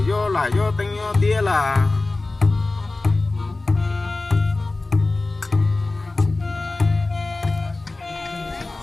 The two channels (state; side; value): quieter; right; 3.2 dB